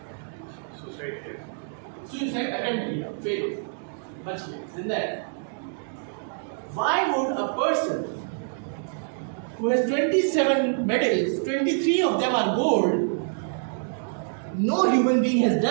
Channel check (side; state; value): left; silent; digital silence